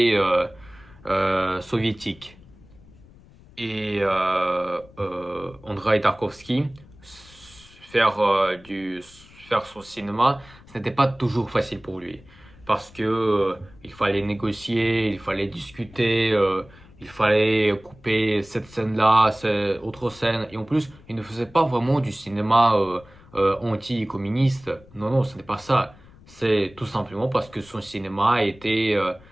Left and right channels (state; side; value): noise; left; rumble, 24 dB below the sound